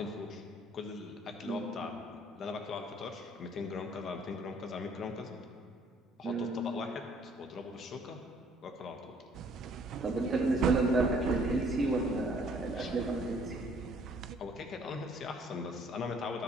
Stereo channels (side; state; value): both; normal; correlation 0.60